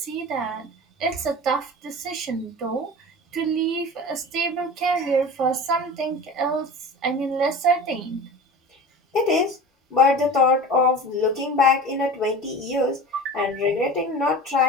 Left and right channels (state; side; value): normal; both; correlation 0.35